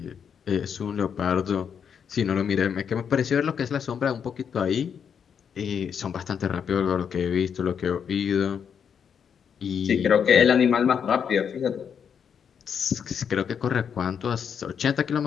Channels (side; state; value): right; quieter; 7.4 dB